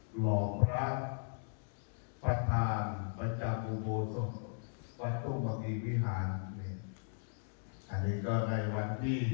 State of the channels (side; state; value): right; silent; digital silence